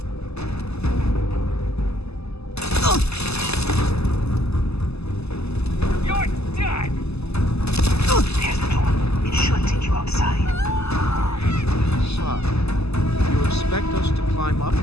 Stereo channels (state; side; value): late; right; 0.79 ms